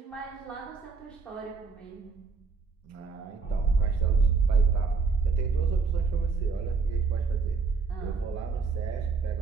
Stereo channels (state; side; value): quieter; left; 4.8 dB